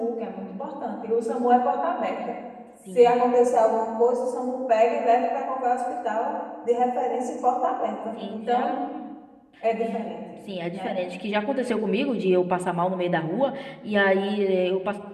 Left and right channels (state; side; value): identical; both; correlation 1.00